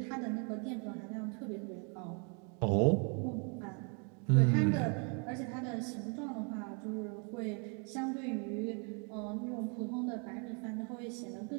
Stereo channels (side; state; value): left; quieter; 37.7 dB